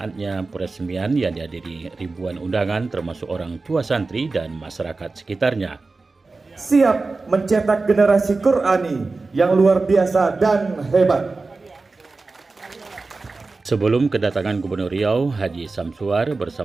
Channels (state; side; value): quieter; left; 3.8 dB